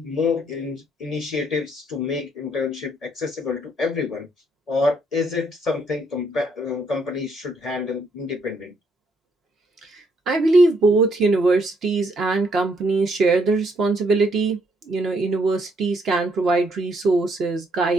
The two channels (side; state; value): both; normal; correlation 0.71